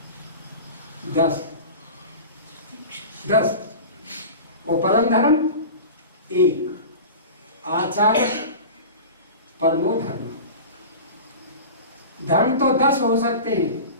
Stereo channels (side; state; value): both; inverted; correlation -0.33